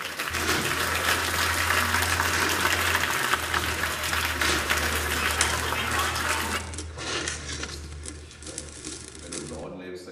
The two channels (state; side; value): identical; both; correlation 1.00